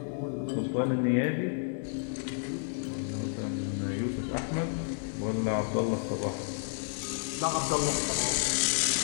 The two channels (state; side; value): silent; right; digital silence